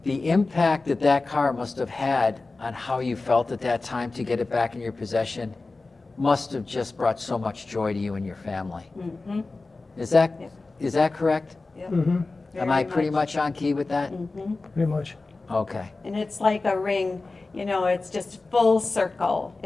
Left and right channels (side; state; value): right; quieter; 3.5 dB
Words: The impact that car must have had on how you felt at that time to get it back in your possession must have just brought so much joy to you and your family. Mm-hmm. Is that Yep. is that correct? Yep. Mm-hmm. Am I pretty much on key with that? Mm-hmm. Pretty much. Okay. And it's like a ring, it's just full circle.